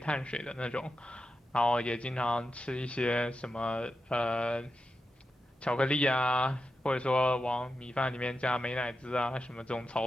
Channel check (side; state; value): both; normal; correlation 0.89